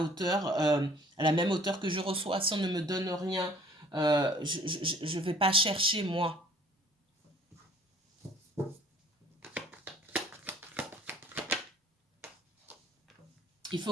la même hauteur que je reçois. Si on ne me donne rien, je ne vais pas chercher moi. Il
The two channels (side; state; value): both; normal; correlation 0.55